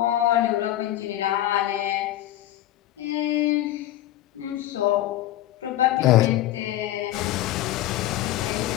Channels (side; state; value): right; quieter; 14.0 dB